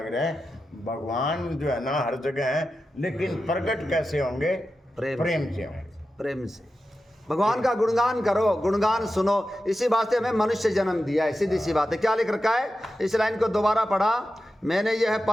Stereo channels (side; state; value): both; normal; correlation 0.91